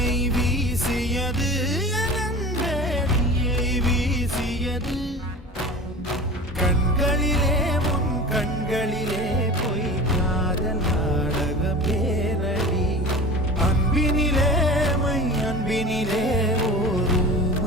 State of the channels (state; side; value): normal; both; correlation 0.35